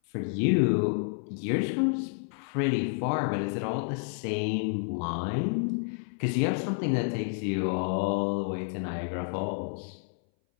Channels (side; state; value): right; silent; 58 dB below the other